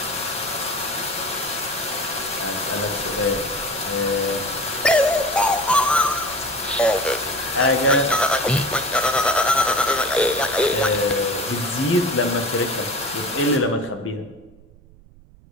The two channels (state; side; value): noise; right; rumble, 25 dB below the sound